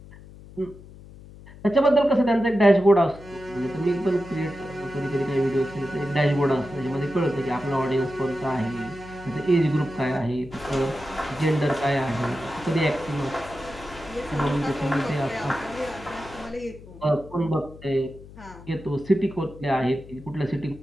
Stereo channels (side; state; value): left; noise; hum, 18 dB below the sound